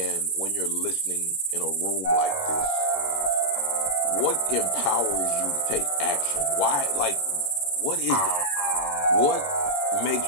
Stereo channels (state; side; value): late; right; 21 ms